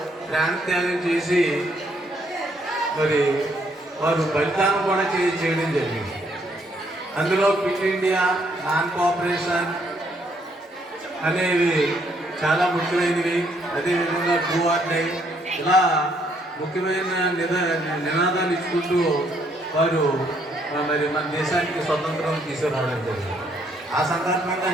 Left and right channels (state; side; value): normal; both; correlation 0.70